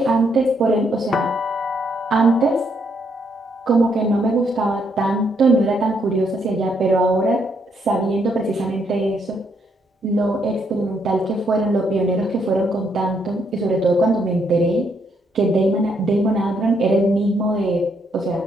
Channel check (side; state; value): both; normal; correlation 0.74